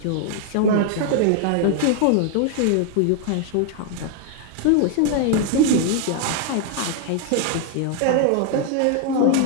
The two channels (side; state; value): both; different; correlation 0.00